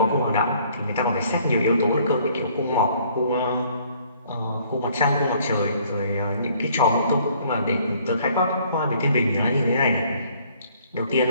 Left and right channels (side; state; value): both; inverted; correlation -0.60